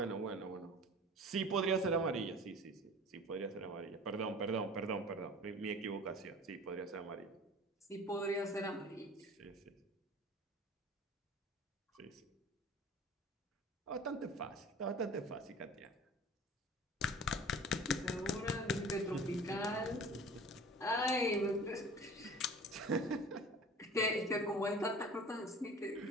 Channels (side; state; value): both; normal; correlation 0.42